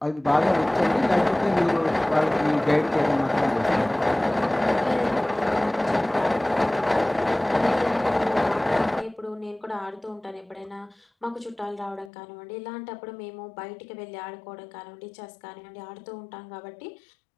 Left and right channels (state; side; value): drops out; right; at 12.1 s